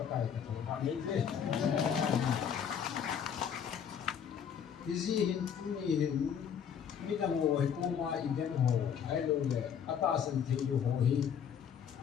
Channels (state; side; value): quieter; right; 8.0 dB